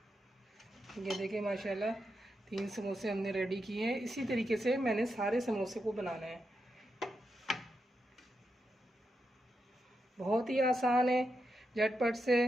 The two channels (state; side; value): normal; both; correlation 0.86